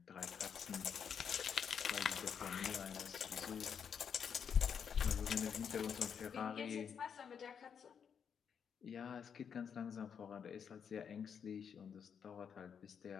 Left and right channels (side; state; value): right; quieter; 7.3 dB